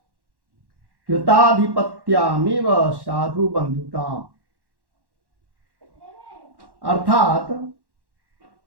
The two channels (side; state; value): left; late; 1.1 ms